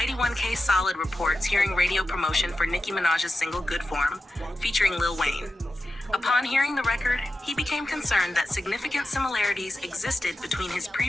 1K Solid reports hearing radio promotion for Nicki Minaj's single Good Form, featuring Lil Wayne. Upon hearing the record, he became concerned that significant similarities existed between his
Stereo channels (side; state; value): both; normal; correlation 0.92